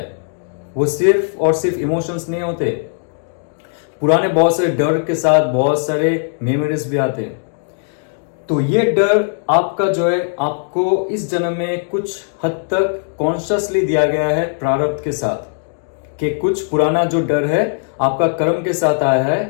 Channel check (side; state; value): right; silent; digital silence